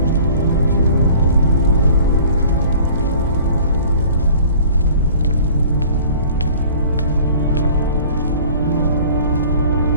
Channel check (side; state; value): both; inverted; correlation -0.48